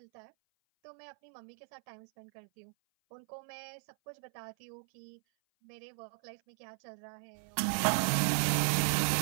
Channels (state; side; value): silent; left; 54 dB below the other